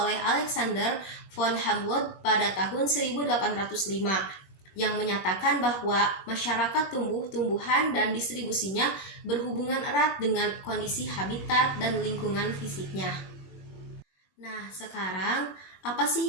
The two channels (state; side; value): late; right; 21 ms